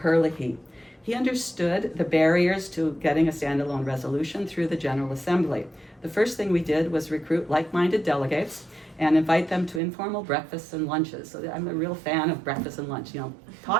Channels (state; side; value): drops out; left; at 9.8 s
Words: He understood the barriers to getting a standalone resolution through the General Assembly. The first thing we did was recruit like-minded delegates and invite them to informal breakfasts and lunches. So I'm a real fan of breakfast and lunch. You know,